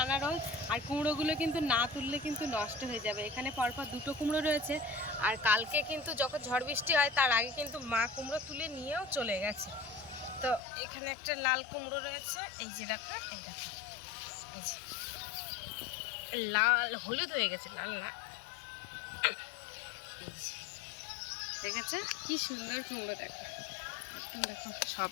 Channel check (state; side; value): drops out; right; at 10.6 s